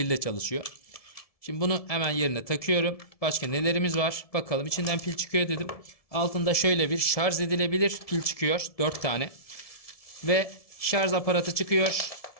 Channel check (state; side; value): late; right; 1.7 ms